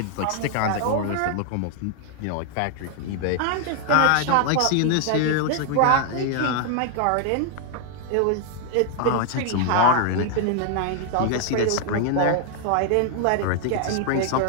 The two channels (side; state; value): both; different; correlation 0.00